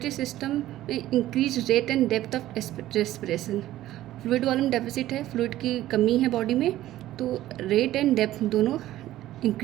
सिस्टम में increase rate and depth of respiration. Fluid volume deficit है, फ्लूइड की कमी है बॉडी में, तो रेट एंड डेप्थ दोनों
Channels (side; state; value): left; quieter; 14.4 dB